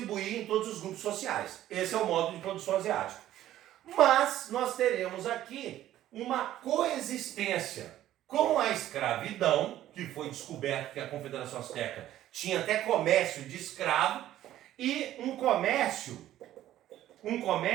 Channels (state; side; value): quieter; left; 13.2 dB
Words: em todos os grupos sociais. Esse é o modo de produção asiático. Mas nós teremos aqui uma coexistência com a escravidão, que foi descoberto que a Confederação Asteca tinha até comércio de escravo, e um comércio